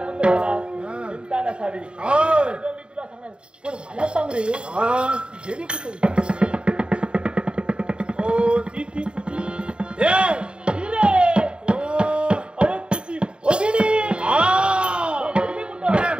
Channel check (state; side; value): late; left; 0.053 ms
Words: झाला चिंता नसावी मी तुला सांगणार पण मला सांग रे गेली कुठे अरे तुझी भगिनी